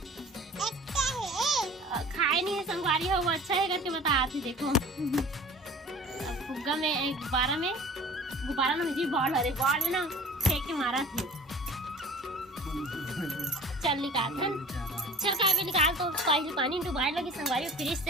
खाए नहीं है संगवारी हो, वो अच्छा है करके बता थी। देखो अब फुग्गा में गुब्बारा में मुझे बॉल में ना फेंक के मारा थे। चल निकाल चल काव्य निकाल। तो पहले पानी में डुबाए लगी संगवारी फ्रिज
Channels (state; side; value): normal; both; correlation 0.44